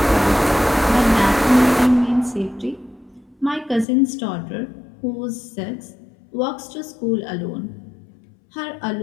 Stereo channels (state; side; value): drops out; right; at 3.9 s